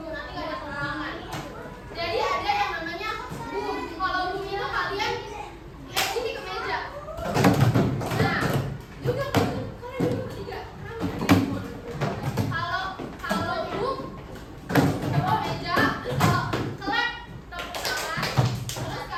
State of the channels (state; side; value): identical; both; correlation 1.00